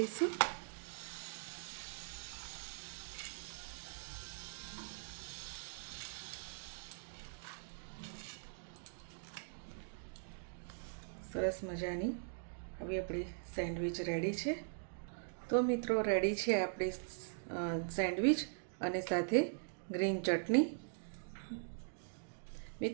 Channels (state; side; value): silent; left; digital silence